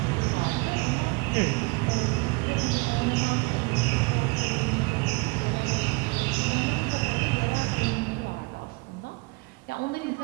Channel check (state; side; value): quieter; left; 27.5 dB